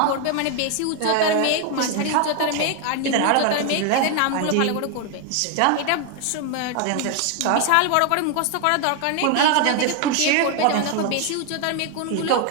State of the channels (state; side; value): different; both; correlation 0.01